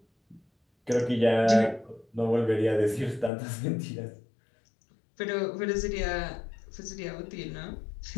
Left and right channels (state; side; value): drops out; right; at 3.3 s